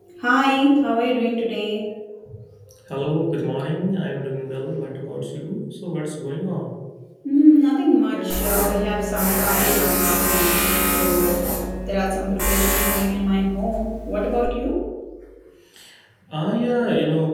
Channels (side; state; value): both; identical; correlation 1.00